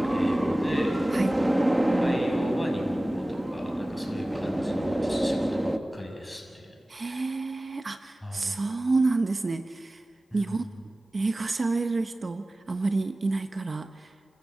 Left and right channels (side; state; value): both; normal; correlation 0.97